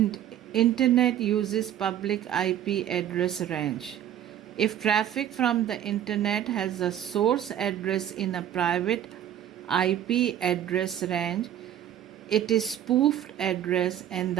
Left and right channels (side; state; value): left; quieter; 10.8 dB